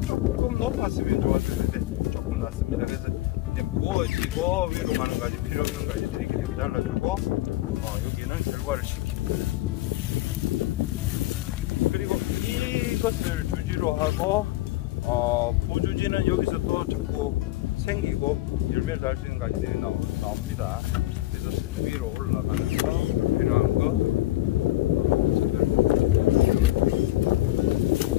조금 높았으면 좋았을 텐데 조금 낮습니다. 그래서 이제 무거워지고 위로 가는 가지, 필요 없는 가지들이 이렇게 잘라주고 여기는 결과를 시키고, 그리고 이것을 주지로 하고 부주지는 여기서 또 자꾸 생기고 열매를 달 수 있는 가지들이 나옵니다. 그래서 위로 올라가면서 필요한 거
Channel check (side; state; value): right; quieter; 16.9 dB